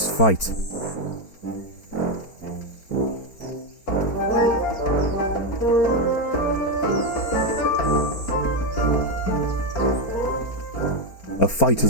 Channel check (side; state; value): right; late; 4.4 ms